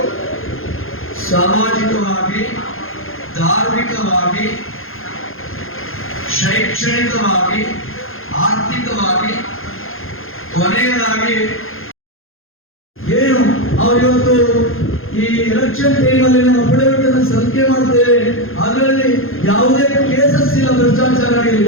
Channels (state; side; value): late; right; 0.60 ms